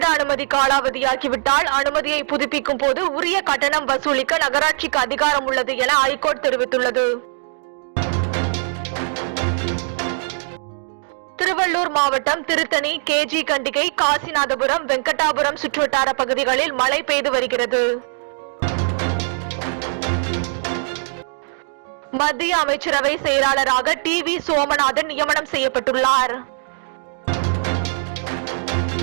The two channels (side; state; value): left; silent; digital silence